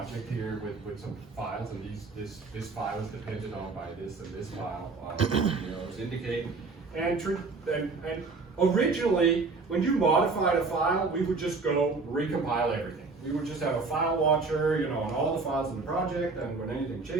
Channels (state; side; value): quieter; left; 4.1 dB